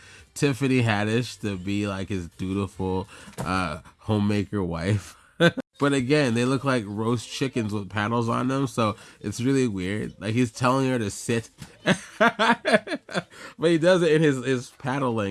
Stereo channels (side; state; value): both; identical; correlation 1.00